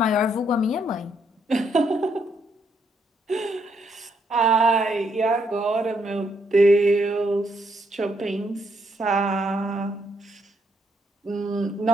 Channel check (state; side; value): normal; both; correlation 0.75